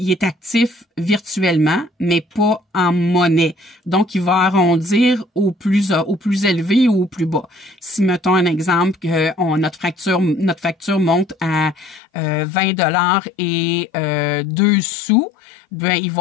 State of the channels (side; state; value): right; drops out; at 12.0 s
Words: est actif virtuellement, mais pas en monnaie. Donc, il va arrondir au plus élevé ou au plus bas. Si, mettons un exemple, que notre facture monte à 20 $ et 2 sous, ben, ils